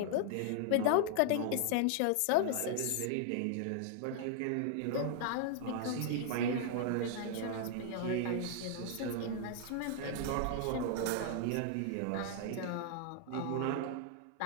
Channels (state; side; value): different; both; correlation 0.00